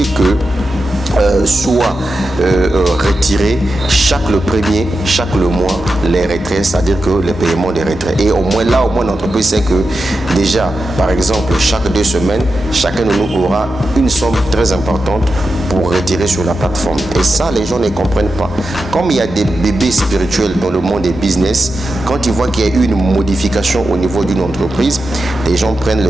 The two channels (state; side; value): normal; both; correlation 0.90